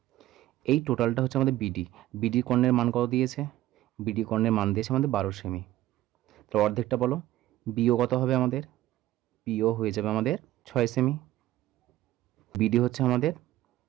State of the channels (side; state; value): left; quieter; 14.9 dB